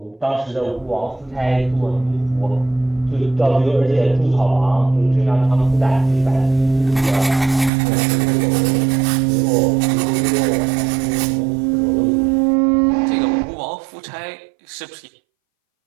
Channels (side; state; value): left; drops out; at 7.7 s